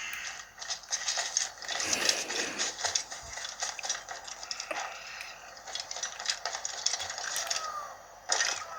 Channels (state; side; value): noise; left; hum, 30 dB below the sound